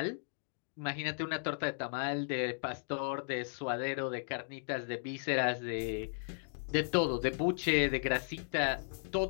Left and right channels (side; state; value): right; silent; digital silence